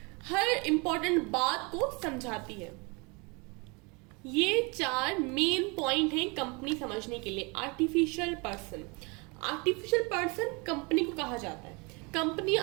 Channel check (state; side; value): quieter; left; 29.7 dB